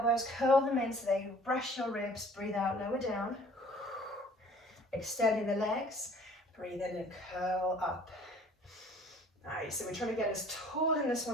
curl them in so they brush your ribs. Breathe out, lower down. Extending the legs, breathe in and curl up. Nice, so we're trying to get as tall in this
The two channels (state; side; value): normal; both; correlation 0.52